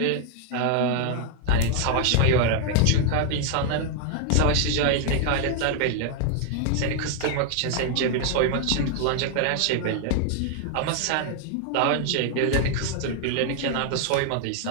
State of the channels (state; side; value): different; both; correlation 0.00